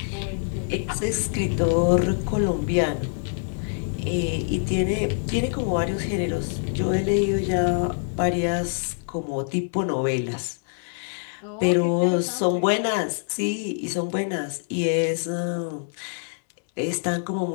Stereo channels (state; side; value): silent; right; 62 dB below the other